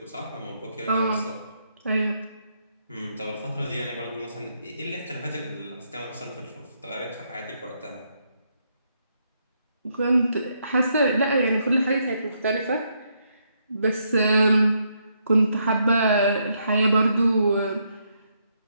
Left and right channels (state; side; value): inverted; both; correlation -0.76